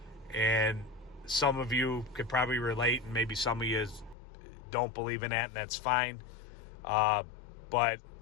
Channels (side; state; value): right; drops out; at 4.2 s